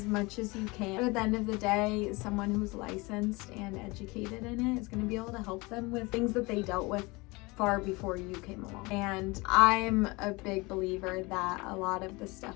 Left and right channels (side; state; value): right; quieter; 24.6 dB